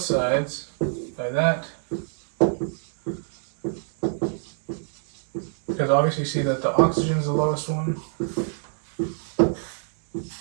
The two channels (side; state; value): left; silent; digital silence